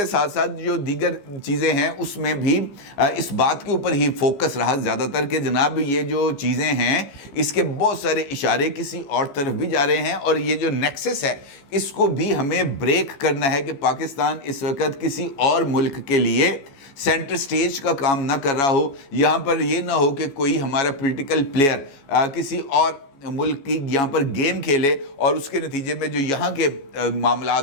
ساتھ ساتھ جو دیگر چیزیں ہیں اس میں بھی اس بات کے اوپر ہی فوکس رہا زیادہ تر کہ جناب یہ جو چیزیں ہیں اس کے بہت سارے اشارے کسی اور طرف بھی جا رہے ہیں، اور یہ جو نیکسس ہے اس کو بھی ہمیں بریک کرنا ہے کہ پاکستان اس وقت کسی اور ملک کے لیے سینٹر سٹیج کا کام نہ کر رہا ہو، یہاں پر یہ نہ ہو کہ کوئی ہمارا پولیٹیکل پلیئر کسی اور ملک کی یہاں پر گیم کھیلے اور اس کے نتیجے میں جو یہاں کے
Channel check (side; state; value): right; late; 15 ms